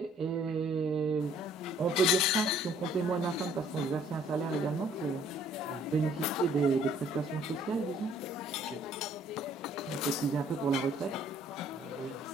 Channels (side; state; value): both; normal; correlation 0.60